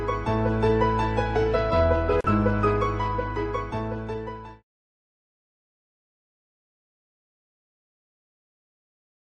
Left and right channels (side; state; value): both; identical; correlation 1.00